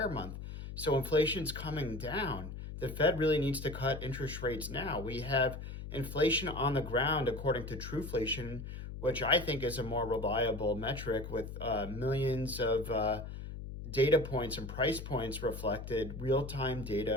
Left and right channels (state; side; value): noise; left; hum, 9 dB below the sound